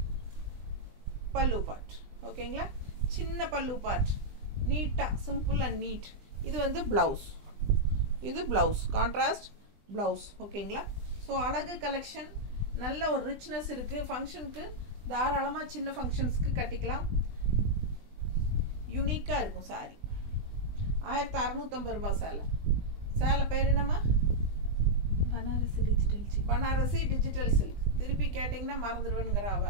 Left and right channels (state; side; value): late; left; 20 ms